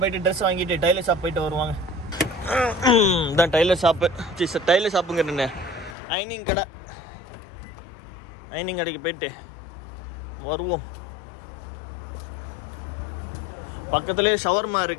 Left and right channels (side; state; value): right; drops out; at 6.0 s